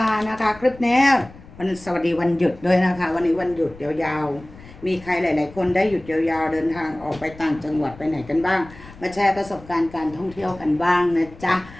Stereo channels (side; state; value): left; noise; rumble, 20 dB below the sound